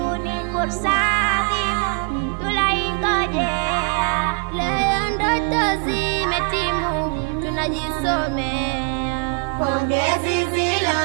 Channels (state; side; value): quieter; left; 36.6 dB